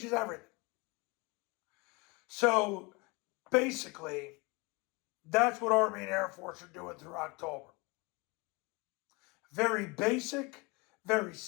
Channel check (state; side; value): quieter; right; 26.4 dB